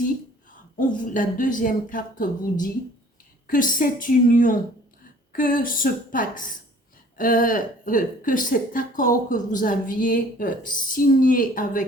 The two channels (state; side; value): normal; both; correlation 0.53